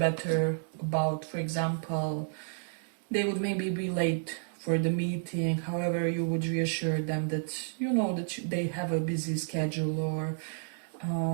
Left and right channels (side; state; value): left; silent; 57 dB below the other